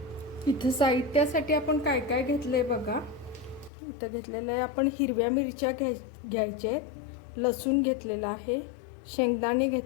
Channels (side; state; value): right; drops out; at 3.7 s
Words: इथं साहित्यासाठी आपण काय काय घेतले बघा. इथं घेतलेलं आहे आपण हिरव्या मिरच्या घ्यायचे, लसूण घेतलेला आहे, शेंगदाणे